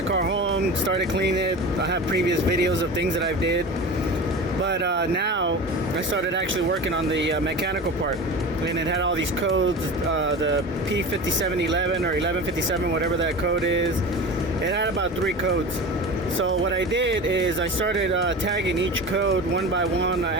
car home, started cleaning it. I have previous videos of things that I've did. But now I started actually working on the mechanical part. And it had all these codes, the P5711 or 1157, whatever that code is. It had about 3 codes. So what I did is I started tagging each code one by one. I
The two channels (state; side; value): normal; both; correlation 0.32